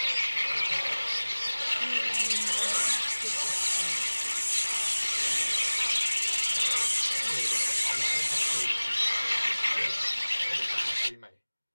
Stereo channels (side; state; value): both; inverted; correlation -1.00